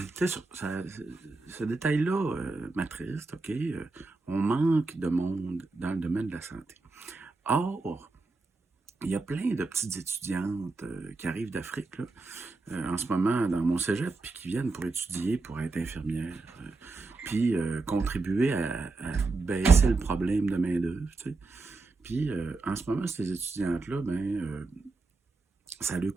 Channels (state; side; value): quieter; left; 3.6 dB